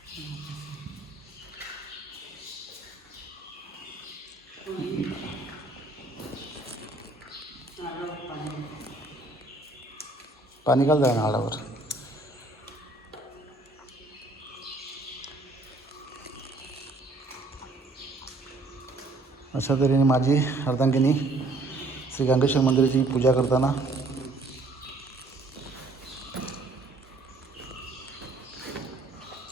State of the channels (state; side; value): quieter; left; 3.1 dB